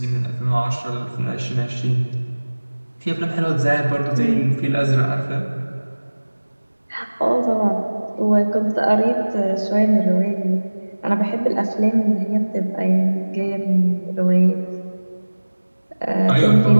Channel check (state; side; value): inverted; both; correlation -1.00